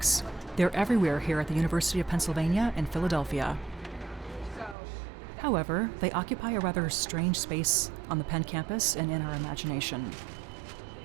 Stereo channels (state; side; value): drops out; left; at 4.8 s